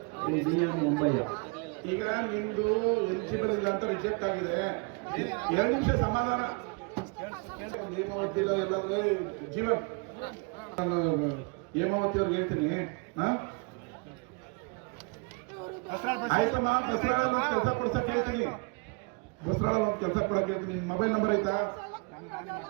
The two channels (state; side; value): quieter; left; 32.0 dB